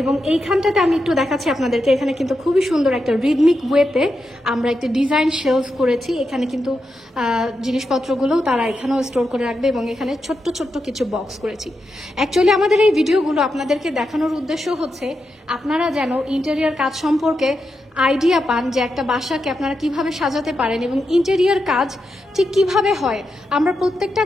এবং এইখানটাতে আমি একটু দেখাচ্ছি আপনাদেরকে, এখানে কিন্তু খুবই সুন্দর একটা রিদমিক ওয়েতে আমরা একটা ডিজাইন শেলফ করেছি। এখানে কিন্তু জিনিসপত্রগুলোও তারা এখানেও স্টোর করে রাখবে, এবং এখানে ছোট্ট ছোট্ট কিছু বক্স করেছি। অ্যাকচুয়ালি আমাদের এই ভিডিওগুলো আপনাদেরকে দেখানোর উদ্দেশ্য হচ্ছে আপনারা যেন ইন্টেরিয়ার কাজ সম্পর্কে আইডিয়া পান, যে একটা বাসাকে আপনারা কিভাবে সাজাতে পারেন এবং ইন্টেরিয়ার কাজ ঠিক কিভাবে হয়। আমরা প্রত্যেকটা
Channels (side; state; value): both; normal; correlation 0.87